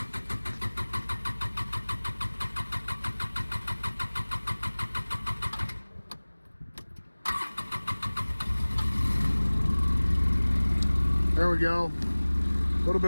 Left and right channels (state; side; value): inverted; both; correlation -1.00